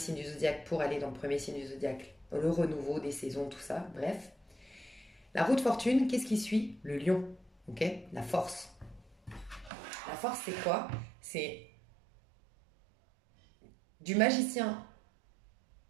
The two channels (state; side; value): drops out; left; at 9.7 s